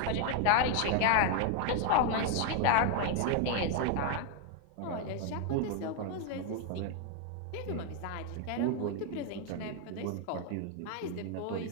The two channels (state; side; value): different; both; correlation 0.00